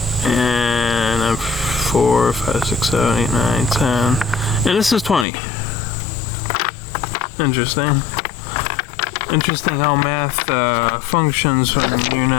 and 4, 5, 6, 7, 8, 9, 10, and this is 20. Interesting. Interesting how math functions when you're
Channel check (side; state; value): right; drops out; at 5.2 s